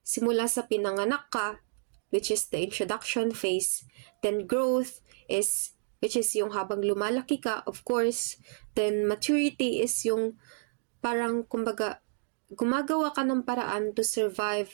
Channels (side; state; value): left; silent; digital silence